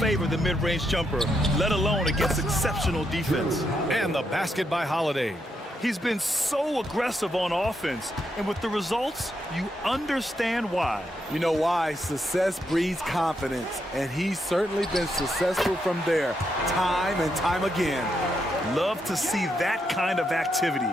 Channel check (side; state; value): both; normal; correlation 0.80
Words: the mid-range jumper, let alone against exceptional defense. And the basket by Holiday. He's been so aggressive on offense, and with the results, you understand why. You know why? Success breeds confidence, and he's certainly been successful from there, time and time again. Love to see that kind of activity.